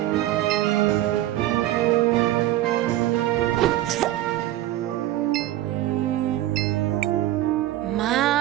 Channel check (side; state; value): left; quieter; 14.6 dB